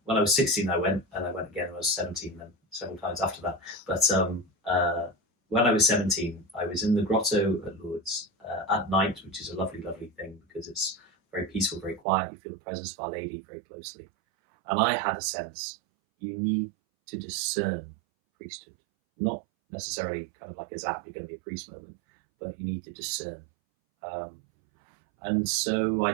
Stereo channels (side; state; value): left; drops out; at 12.0 s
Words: when I was 16 I went, and I went again when I was 17, then several times after that. But when I was 17, I was in the grotto at Lourdes at night, which is a lovely, lovely thing because it's very peaceful, very quiet. You feel the presence of Our Lady very closely. And I had a sense, you need to discern priesthood. Not necessarily kind of like a zap, you're going to be a priest moment, but you need to discern. And so I